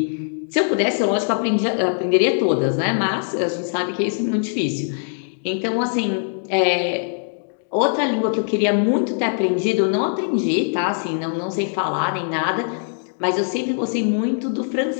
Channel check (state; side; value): silent; right; digital silence